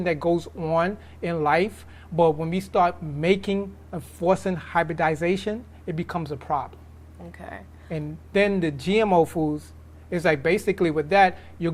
that goes on in life, but when we start making and forcing hybridization, it becomes a problem. Okay. And then the GMO foods is like basically with that, you're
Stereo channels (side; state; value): both; identical; correlation 1.00